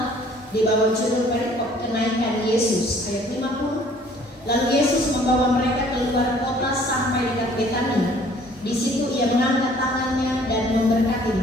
di bawah judul perikop kenaikan Yesus, ayat 50. Lalu Yesus membawa mereka keluar kota sampai dekat Betania. Di situ ia mengangkat tangannya dan memberkati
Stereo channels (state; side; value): normal; both; correlation 0.56